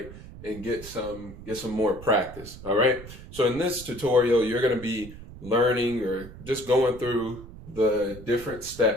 And get some more practice. All right. So in this tutorial, you're going to be learning or just going through the different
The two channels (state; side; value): noise; right; rumble, 15 dB below the sound